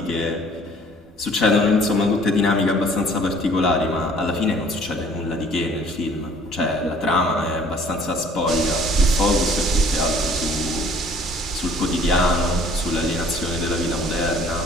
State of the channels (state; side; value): normal; both; correlation 0.55